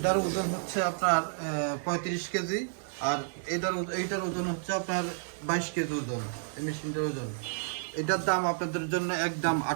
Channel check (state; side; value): silent; left; digital silence